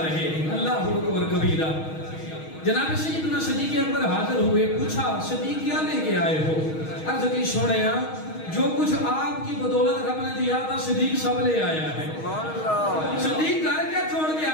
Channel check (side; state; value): right; late; 6.3 ms